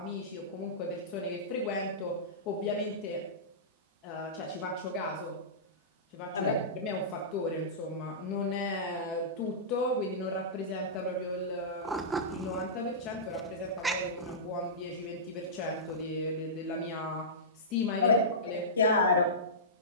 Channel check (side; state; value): both; normal; correlation -0.18